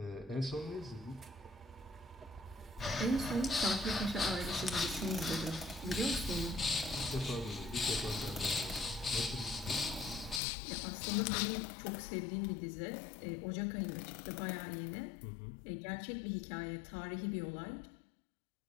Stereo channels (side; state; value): right; drops out; at 10.4 s